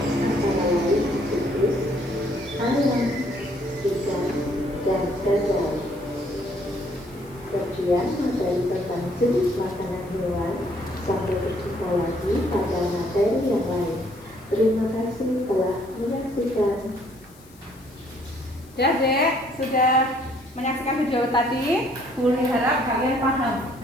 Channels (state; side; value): noise; left; hiss, 26 dB below the sound